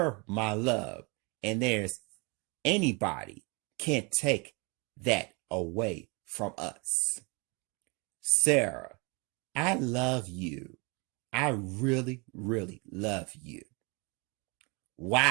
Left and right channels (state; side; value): quieter; left; 30.2 dB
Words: my love, and there's anybody can't take that away from us. Sarah, I love you. I really, really love you.